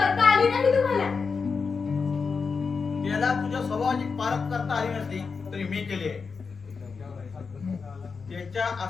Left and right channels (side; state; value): right; quieter; 5.1 dB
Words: आली नाही तुम्हाला. त्याला तुझ्या स्वभावाची पारख करता आली नसली तरी मी केली आहे. त्याच्या